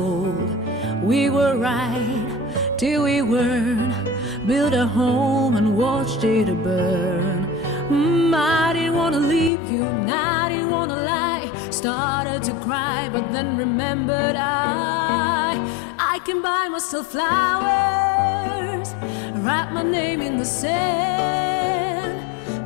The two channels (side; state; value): right; drops out; at 9.5 s